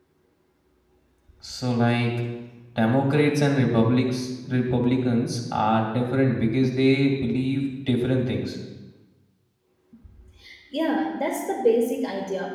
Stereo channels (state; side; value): identical; both; correlation 1.00